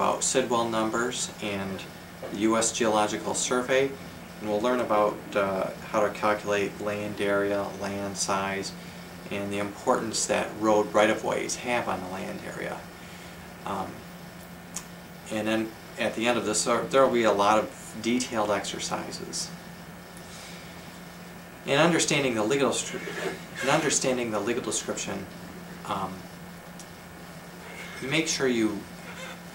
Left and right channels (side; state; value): both; identical; correlation 1.00